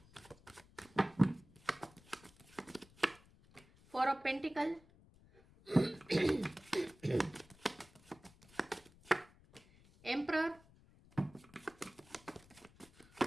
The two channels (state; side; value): noise; left; rumble, 25 dB below the sound